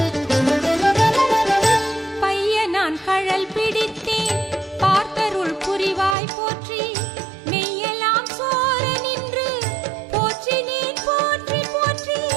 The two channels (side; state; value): left; drops out; at 6.2 s